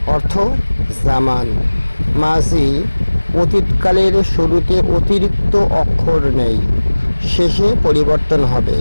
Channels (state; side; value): inverted; both; correlation -1.00